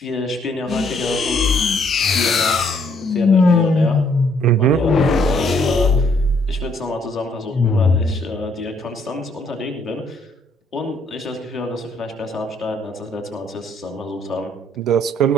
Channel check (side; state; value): both; normal; correlation 0.67